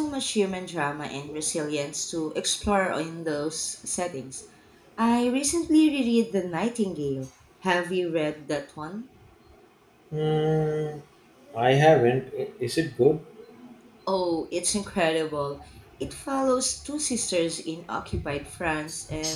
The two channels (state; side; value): identical; both; correlation 1.00